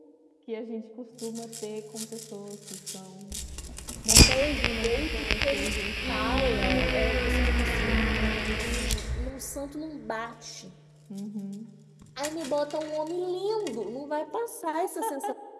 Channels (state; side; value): identical; both; correlation 1.00